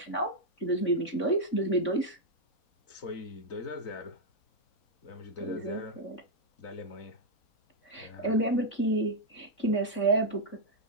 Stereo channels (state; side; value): late; right; 3.5 ms